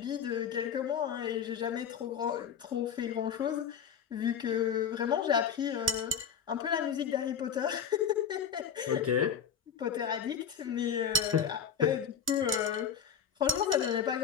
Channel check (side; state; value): right; quieter; 7.3 dB